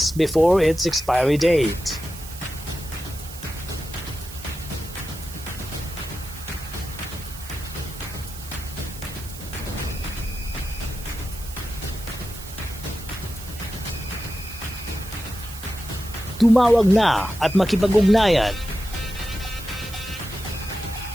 before its expiry date. Tumawag na at makipag-ugnayan.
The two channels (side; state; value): right; noise; hiss, 14 dB below the sound